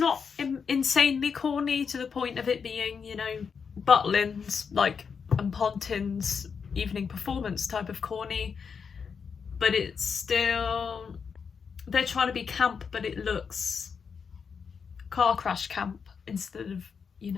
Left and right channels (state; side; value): quieter; right; 6.1 dB